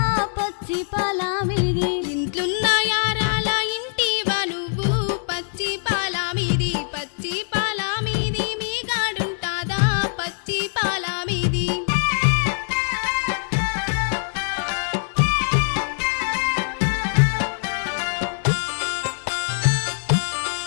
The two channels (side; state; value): right; silent; digital silence